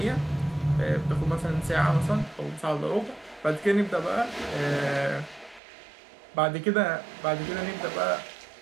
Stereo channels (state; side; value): drops out; left; at 5.6 s